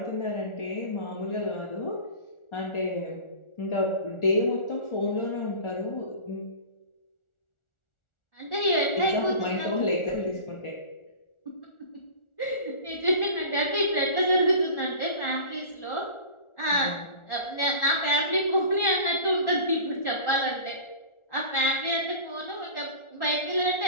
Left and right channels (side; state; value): right; late; 1.4 ms